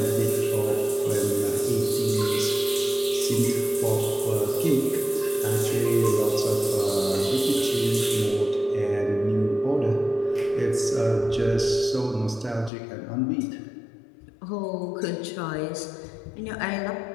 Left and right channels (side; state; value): right; drops out; at 12.7 s